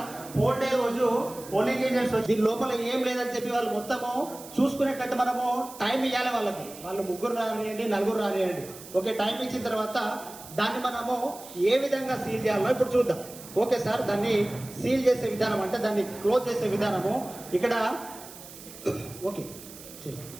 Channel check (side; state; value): right; noise; hiss, 16 dB below the sound